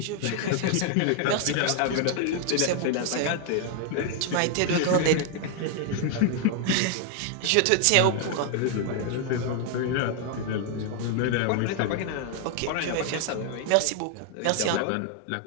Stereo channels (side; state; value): both; different; correlation 0.00